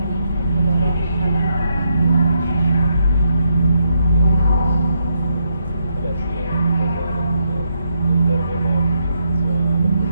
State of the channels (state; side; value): inverted; both; correlation -0.79